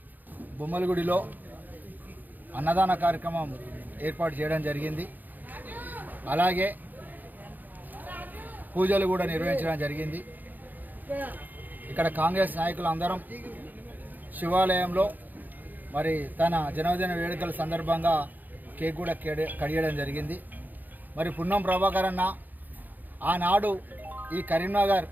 బొమ్మలగుడిలో అన్నదాన కార్యక్రమం ఏర్పాటు చేయడం జరిగింది. అలాగే పూజలు కూడా నిర్వహించడం జరిగింది. ఇక్కడ కాంగ్రెస్ నాయకులు అందరం శివాలయంలో మరి తన జన్మదిన వేడుకల సందర్భంగా కేక్ కూడా కడియడం జరిగింది. మరి పున్నం ప్రభాకర్ అన్న ఆనాడు ఈ కరీంనగర్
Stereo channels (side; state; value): left; late; 0.085 ms